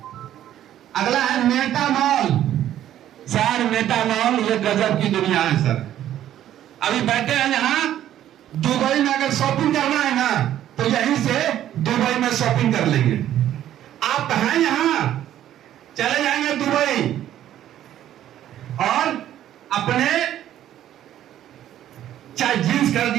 अगला है मेटामॉल। सर मेटामॉल ये गजब की दुनिया है सर। अभी बैठे हैं यहाँ, दुबई में अगर शॉपिंग करना है ना तो यहीं से दुबई में शॉपिंग कर लेंगे। आप हैं यहां, चले जाएंगे दुबई और अपने चाहे जींस कर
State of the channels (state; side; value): quieter; left; 11.8 dB